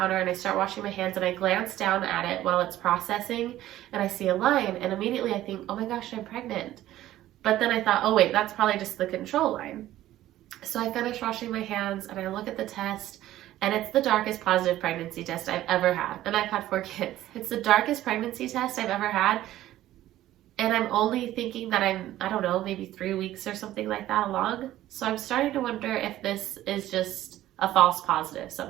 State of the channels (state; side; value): quieter; left; 14.1 dB